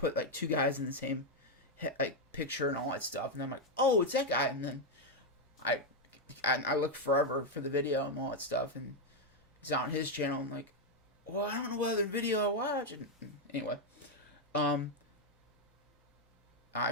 like 2 guys in the same like picture and all that stuff, and I'm like, oh, it's that guy. And then I looked forever for the video and all that stuff, and it's on his channel. I'm like, well, I don't know what other video I watch. And anyway,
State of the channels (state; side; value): normal; both; correlation 0.02